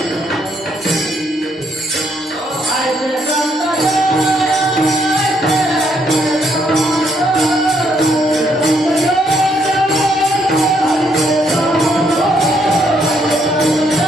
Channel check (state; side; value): normal; both; correlation 0.73